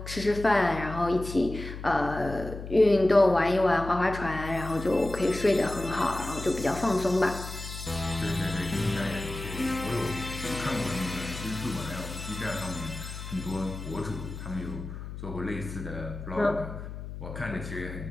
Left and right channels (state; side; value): noise; left; hum, 9 dB below the sound